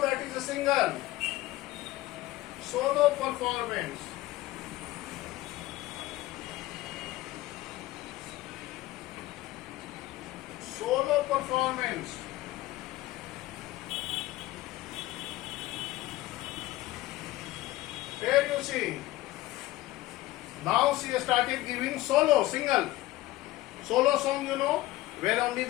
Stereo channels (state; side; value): quieter; right; 17.4 dB